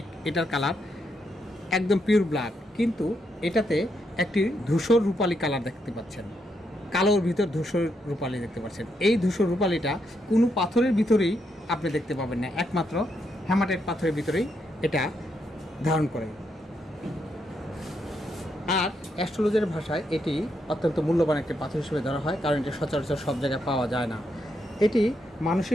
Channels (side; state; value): both; normal; correlation 0.80